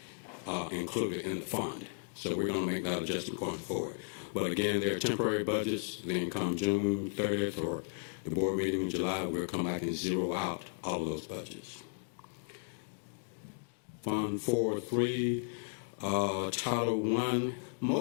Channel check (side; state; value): right; silent; digital silence